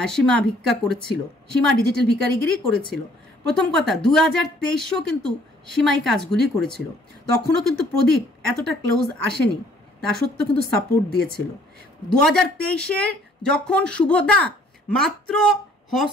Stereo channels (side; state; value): both; normal; correlation 0.60